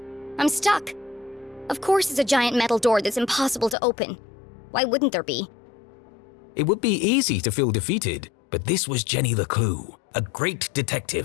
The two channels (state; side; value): drops out; right; at 3.8 s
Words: I'm stuck. Of course it's a giant metal door that's impossible to open. Why wouldn't there be? It would be easy to feel defeated, but this was Jenny LeClue, a great